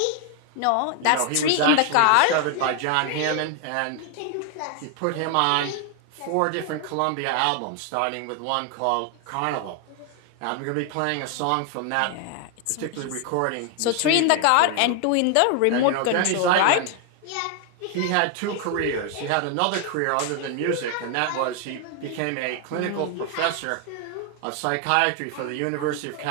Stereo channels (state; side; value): different; both; correlation 0.00